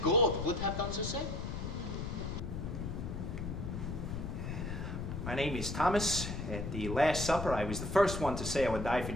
God would have done the same. My name is Thomas. At the Last Supper, I was the first one to say I would die for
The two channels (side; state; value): left; noise; rumble, 5 dB below the sound